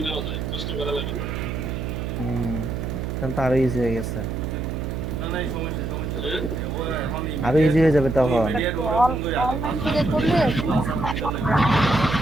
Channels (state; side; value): noise; right; hum, 4 dB below the sound